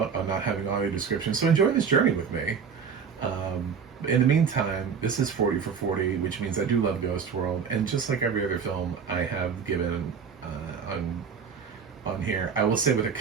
on not having audio description. So enjoy this journey with me. In the meantime, this is 40 for 40, which means I do love Ghost World, and just like every other film I have given on here, I will say with a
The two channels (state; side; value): quieter; left; 6.4 dB